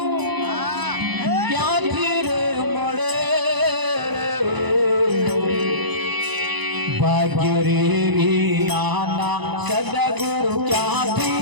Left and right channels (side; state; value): left; late; 1.0 ms